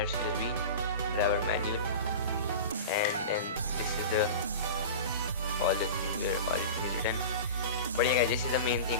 USB driver manual, and then this is the all the things where everything is written. But yeah guys, this is the main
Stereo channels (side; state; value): both; inverted; correlation -0.30